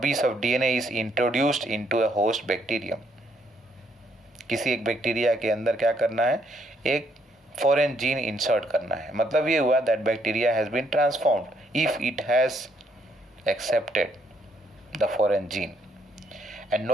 of DNA is introduced into a host bacterium. किसी एक bacteria के अंदर क्या करना है, एक फॉरेन जीन इंसर्ट करना है. मतलब ये हुआ that bacteria has been transformed if it has accepted the foreign gene. And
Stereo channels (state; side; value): normal; both; correlation 0.71